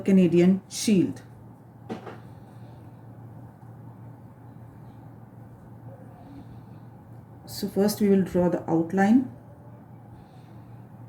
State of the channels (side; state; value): both; identical; correlation 1.00